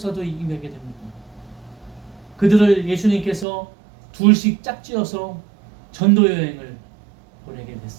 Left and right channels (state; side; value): drops out; left; at 3.5 s